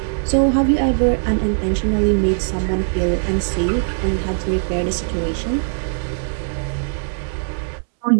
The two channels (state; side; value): silent; left; digital silence